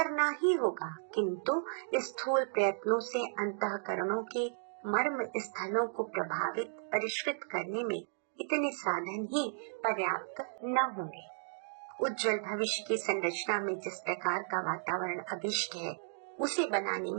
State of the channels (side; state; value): left; silent; digital silence